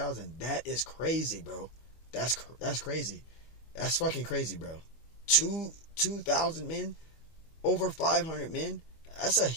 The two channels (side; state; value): right; late; 25 ms